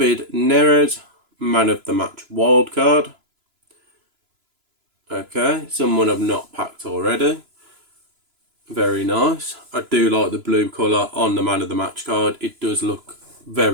Neres Man of the Match wild card. Okay, someone I've not packed already. Very nice. I do like the blue colour on the Man of the Match card. It does look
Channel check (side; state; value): left; late; 3.0 ms